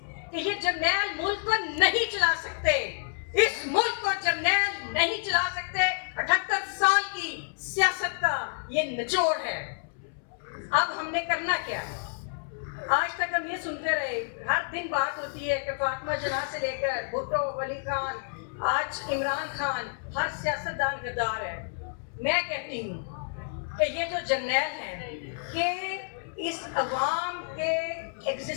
کہ یہ جرنیل ملک کو نہیں چلا سکتے، اس ملک کو جرنیل نہیں چلا سکتے. 78 سال کی سیاست کا یہ نچوڑ ہے. اب ہم نے کرنا کیا ہے؟ آج تک ہم یہ سنتے رہے، ہر دن بات ہوتی ہے کہ فاطمہ جناح سے لے کر بھٹو، ولی خان، آج عمران خان، ہر سیاستدان غدار ہے. میں کہتی ہوں کہ یہ جو جرنیل ہیں کہ اس عوام کے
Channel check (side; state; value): right; silent; 59 dB below the other